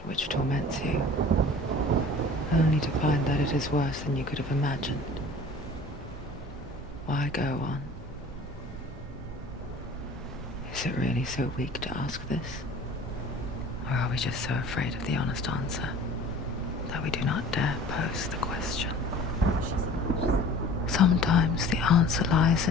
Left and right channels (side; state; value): both; normal; correlation 0.45